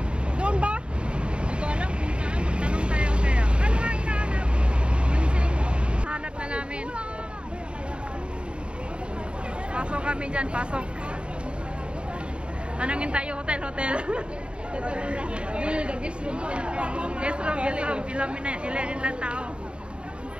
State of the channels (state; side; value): late; left; 0.054 ms